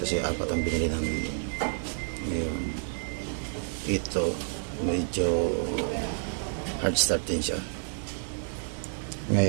4 ang binili namin. Ngayon ito medyo hard start din siya.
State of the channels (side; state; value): left; silent; digital silence